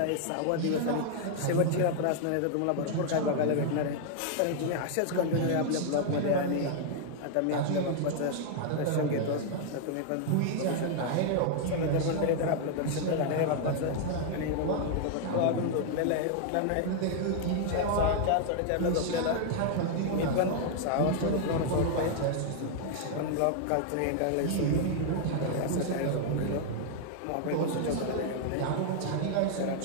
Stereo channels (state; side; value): different; both; correlation 0.00